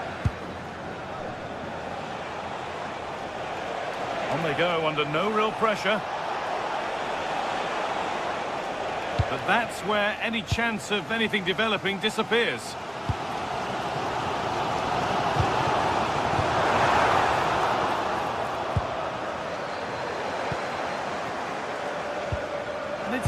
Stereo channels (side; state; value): both; identical; correlation 1.00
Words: On they go under no real pressure. But that's where any chance of anything developing disappears. And